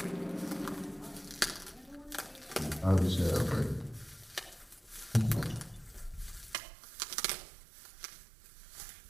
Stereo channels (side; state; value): left; drops out; at 6.6 s